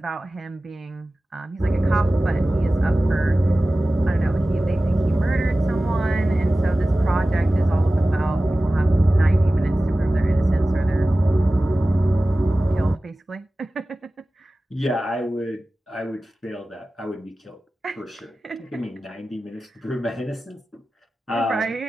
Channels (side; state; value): both; normal; correlation 0.96